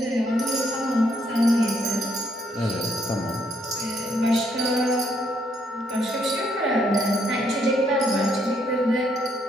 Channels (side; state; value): both; normal; correlation 0.72